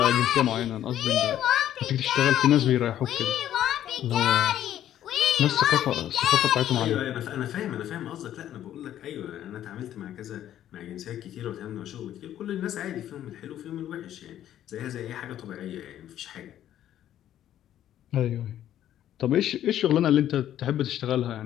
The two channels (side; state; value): right; quieter; 11.6 dB